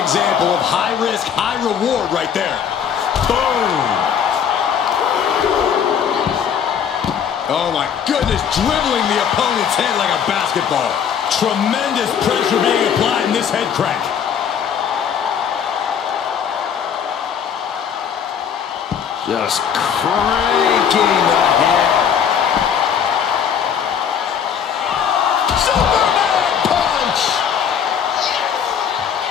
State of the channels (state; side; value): quieter; right; 7.9 dB